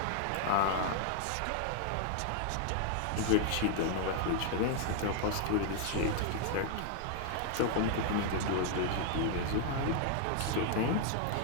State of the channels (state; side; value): different; both; correlation 0.00